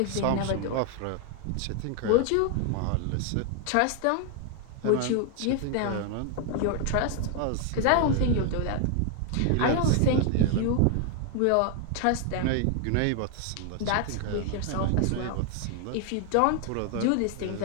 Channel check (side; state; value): both; different; correlation 0.00